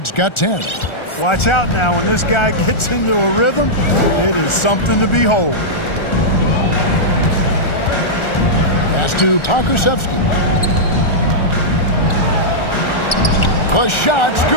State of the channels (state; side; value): late; right; 1.4 ms